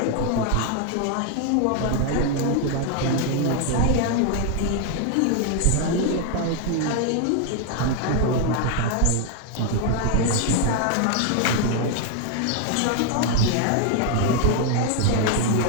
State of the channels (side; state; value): both; different; correlation 0.00